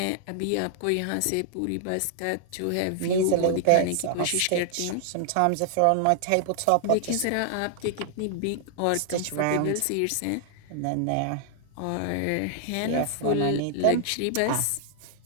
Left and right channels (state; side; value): different; both; correlation -0.01